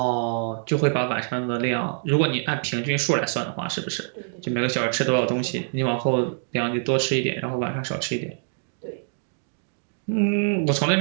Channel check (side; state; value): left; silent; digital silence